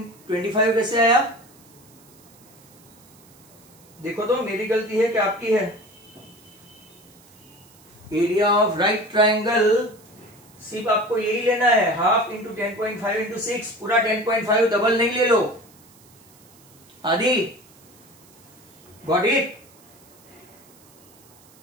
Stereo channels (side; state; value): right; noise; hiss, 26 dB below the sound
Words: कैसे आया? देखो तो मेरी गलती है कि आपकी है? एरिया ऑफ राइट ट्रायंगल सिर्फ आपको यही लेना है, हाफ इंटू 10.5 इंटू 6, पूरा 10.5 डबल नहीं ले लो। आदि गॉट इट?